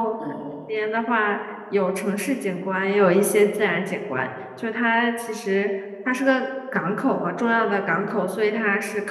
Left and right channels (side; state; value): both; identical; correlation 1.00